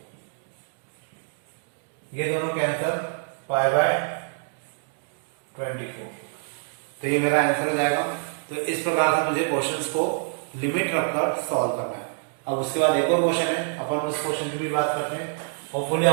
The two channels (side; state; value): left; silent; digital silence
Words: ये दोनों कैंसल π/24, तो ये मेरा आंसर हो जाएगा। तो इस प्रकार से मुझे क्वेश्चंस को लिमिट रखकर सॉल्व करना है। अब उसके बाद एक और क्वेश्चन है, अपन उस क्वेश्चन की भी बात करते हैं। होपफुली